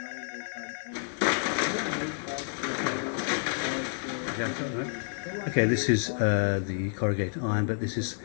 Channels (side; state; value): right; silent; 58 dB below the other